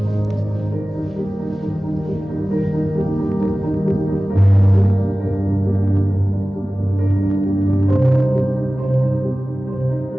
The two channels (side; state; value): both; normal; correlation 0.97